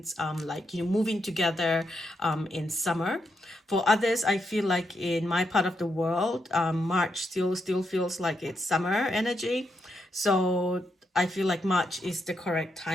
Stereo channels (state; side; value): normal; both; correlation 0.81